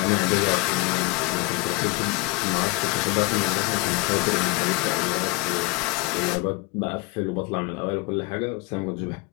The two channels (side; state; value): right; quieter; 22.9 dB